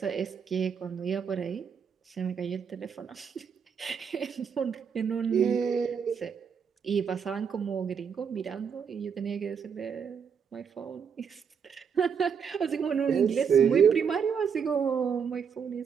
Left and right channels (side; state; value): left; quieter; 6.8 dB